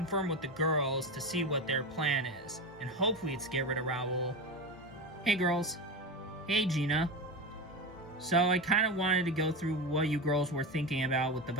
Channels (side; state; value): both; normal; correlation 0.21